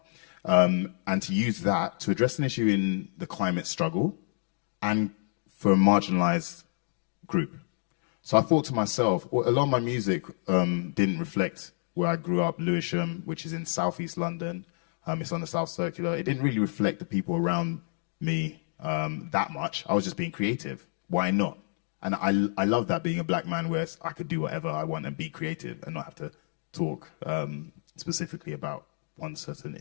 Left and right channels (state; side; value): silent; right; digital silence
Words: and to use that to address an issue in the climate struggle and for a marginalised group. So I thought to myself, well, a lot of my music didn't reflect where I grew up, Lewisham, which is in southeast London. It's on the South Circular. It didn't really reflect the people around me that much. I was just being creative. Why not? And I love that, being a black man, where I could do whatever I want and be creative and not have to talk specifically about one certain